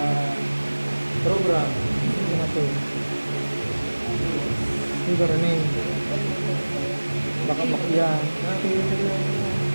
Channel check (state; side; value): inverted; both; correlation -1.00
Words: program. Ano na to? Ito rin. Baka makyan.